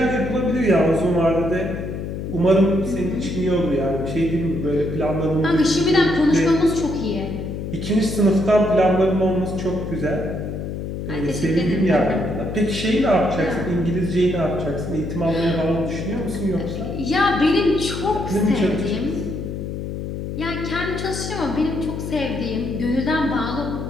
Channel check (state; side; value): noise; left; hum, 6 dB below the sound